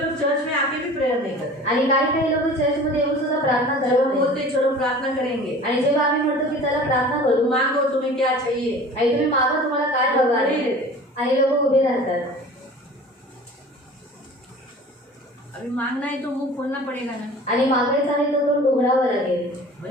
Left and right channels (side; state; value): both; normal; correlation 0.42